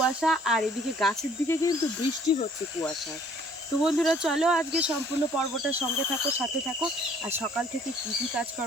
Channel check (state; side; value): normal; both; correlation 0.58